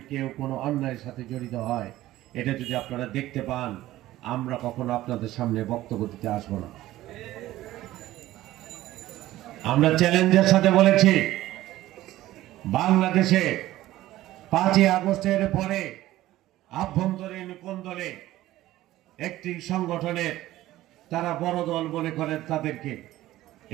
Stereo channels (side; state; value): left; quieter; 15.5 dB